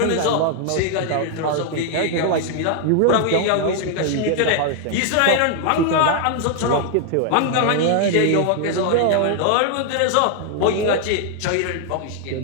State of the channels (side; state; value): both; different; correlation 0.00